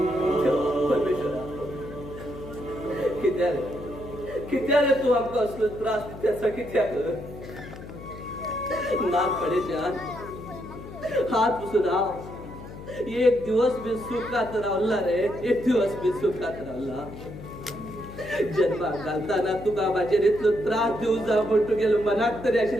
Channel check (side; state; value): left; noise; hum, 13 dB below the sound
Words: कित्यारे तू आमका असलो त्रास त्याचा कित्याक नाक पडेच्या हात पुसून राव. एक दिवस बी सुखात रावला रे, एक दिवस बी सुखात रावला. जन्माक घालताना तुका माझ्यार इतलो त्रास दिवं जा म्हण तू गेलो मनाक तरी